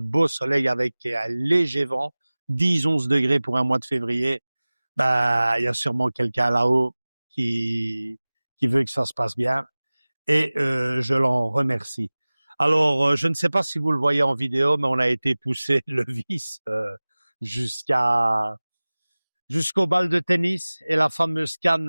beau soleil avec un léger vent, 10-11 degrés pour un mois de février. Il y a sûrement quelqu'un là-haut qui veut que ça se passe bien et je l'en remercie. Alors, je ne sais pas si vous le voyez en vidéo, mais on a été poussé le vis jusqu'à jusqu'au bal de tennis et la fameuse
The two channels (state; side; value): inverted; both; correlation -0.99